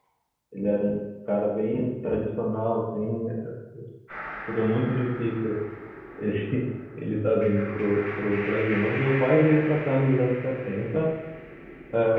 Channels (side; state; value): both; identical; correlation 1.00